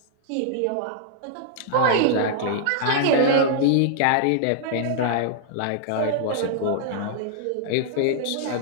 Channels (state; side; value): different; both; correlation -0.01